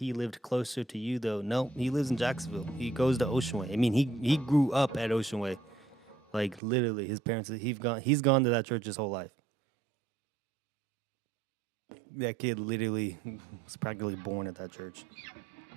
lived closer to you though. No, he lives in Jacksonville. He goes to Ocean Way. I mean, he grew up at Ocean Way. Like literally, his parents he's gone to that church his whole life. That kid literally was practically born at that church.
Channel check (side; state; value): left; drops out; at 6.6 s